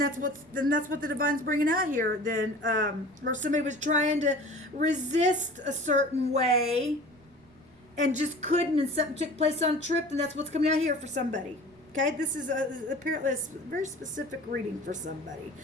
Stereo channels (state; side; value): noise; right; rumble, 30 dB below the sound